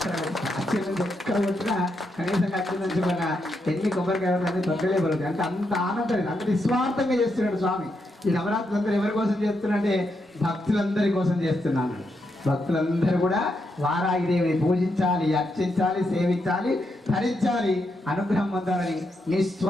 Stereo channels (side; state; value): both; normal; correlation 0.81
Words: అత్యంత ఎక్కడ వచ్చినా కనీసంగా అత్యంత మన ఎన్ని కొబ్బరికాయ తొక్కలే పడుతుంది అంటే అంత ఆనందం అంత నిస్వార్థంగా చేస్తున్నాడు స్వామి. ఈ నవరాత్రులు అందరూ ఎవరి కోసం చేస్తున్నాడంటే భక్తులందరి కోసం చేస్తున్నాను. భక్తులందరూ కూడా వారాహిదేవిని పూజించాలి, అర్చించాలి, సేవించాలి, ధరించాలి, అనుగ్రహం పొందాలని